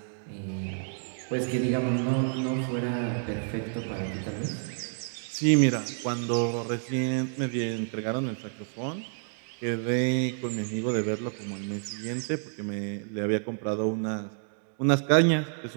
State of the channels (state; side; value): silent; left; digital silence